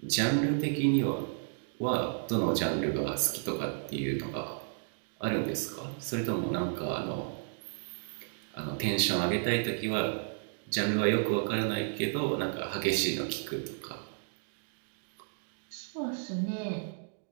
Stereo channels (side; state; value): left; silent; digital silence